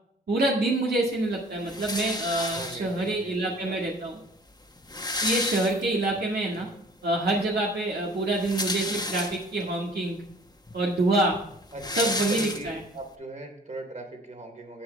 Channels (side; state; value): both; normal; correlation 0.51